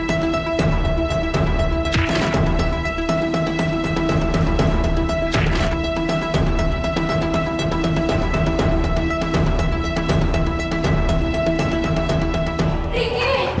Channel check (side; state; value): both; identical; correlation 1.00